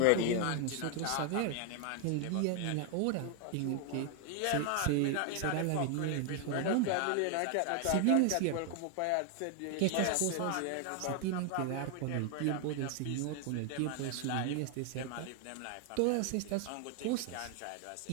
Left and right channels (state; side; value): different; both; correlation 0.00